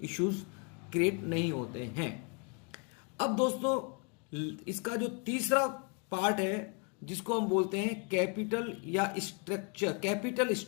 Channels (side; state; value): right; quieter; 34.4 dB